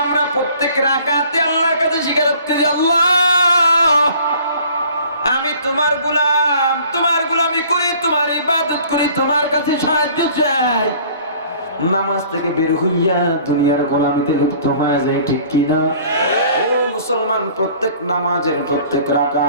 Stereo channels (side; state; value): both; inverted; correlation -0.51